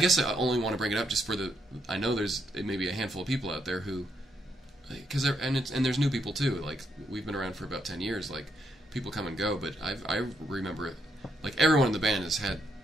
I only want to bring it up just for I know there's maybe a handful of people out there who, because and there's new people too. Like, we've been around for about 10 years. Like, people come and go, but I remember it. Like, everyone in the band has had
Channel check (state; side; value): normal; both; correlation 0.77